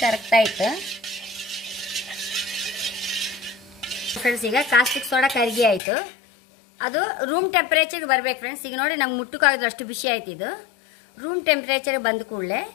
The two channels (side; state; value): right; drops out; at 5.8 s